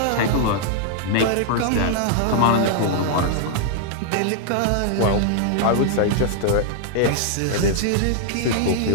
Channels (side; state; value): both; different; correlation -0.01